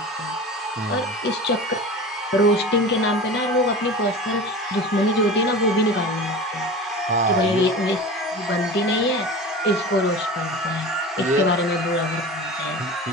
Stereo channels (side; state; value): both; normal; correlation 0.33